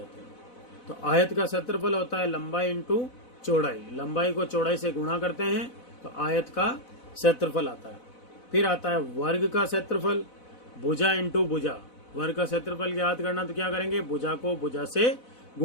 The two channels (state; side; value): late; right; 4.0 ms